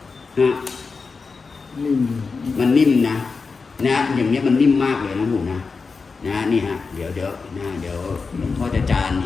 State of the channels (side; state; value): right; quieter; 4.6 dB